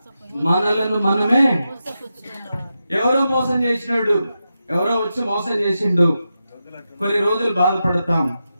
మనలను మనమే ఎవరో మోసం చేసినాడు, ఎవరో వచ్చి మోసం చేసిండు, కొన్ని రోజులు బాధపడతాం.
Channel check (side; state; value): both; inverted; correlation -0.89